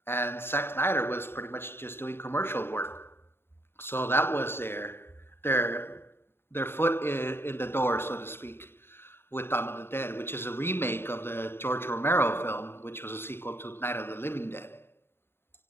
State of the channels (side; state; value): right; late; 0.11 ms